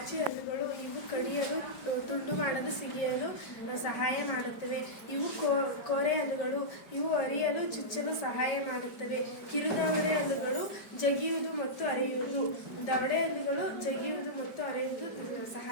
ಹಲ್ಲುಗಳು. ಇವು ಕಡಿಯಲು, ತುಂಡು ಮಾಡಲು, ಸಿಗಿಯಲು ಸಹಾಯ ಮಾಡುತ್ತವೆ. ಇವು ಕೋರೆ ಹಲ್ಲುಗಳು. ಇವು ಅರಿಯಲು, ಚುಚ್ಚಲು ಸಹಾಯ ಮಾಡುತ್ತವೆ. ಕಿರುದವಡೆ ಹಲ್ಲುಗಳು ಜಗಿಯುವುದು ಮತ್ತು ಅರೆಯುವುದು. ದವಡೆ ಹಲ್ಲುಗಳು ಜಗಿಯುವುದು ಮತ್ತು ಅರೆಯುವುದು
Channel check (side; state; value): right; late; 4.9 ms